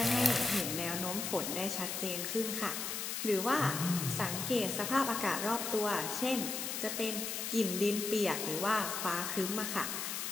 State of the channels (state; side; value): noise; left; hiss, 3 dB below the sound